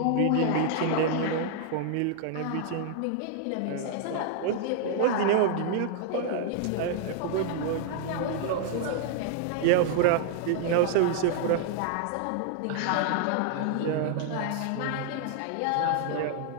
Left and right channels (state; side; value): different; both; correlation 0.00